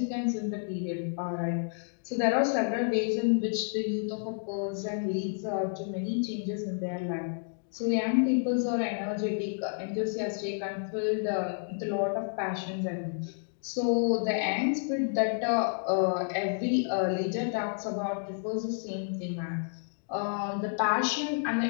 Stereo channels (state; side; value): silent; right; digital silence